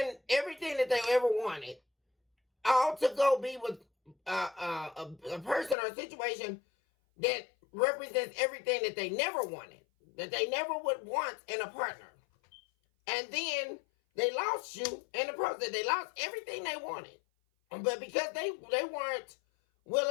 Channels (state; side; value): drops out; right; at 5.8 s